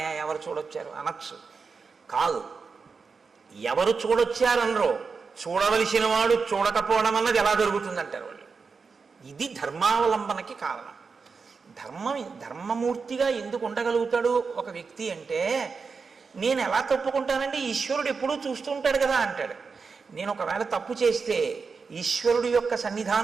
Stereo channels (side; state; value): left; quieter; 5.0 dB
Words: ఎవరు చూడొచ్చారు అనొచ్చు. కాదు, ఎవరు చూడొచ్చారనరో, చూడవలసిన వాడు చూడకపోవడం అన్నది ఎలా జరుగుతుందంటారు వాళ్ళు. ఇది ధర్మావలంబనకి కారణం. ధర్మమూర్తిగా ఎందుకు ఉండగలుగుతాడు ఒక వ్యక్తి అంటే, నేను ఎలా తప్పుకుంటానండి, ఈశ్వరుడు ఎప్పుడూ చూస్తూ ఉంటాడు కదా అంటాడు. నేను ఒకవేళ తప్పు చేస్తే ఈశ్వరుడు యొక్క